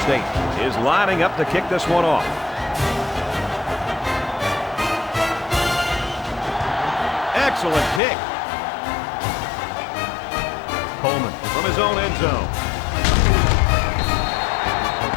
State is lining up to kick this one off. Excellent kick. Coleman from his own end zone.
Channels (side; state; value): right; drops out; at 8.0 s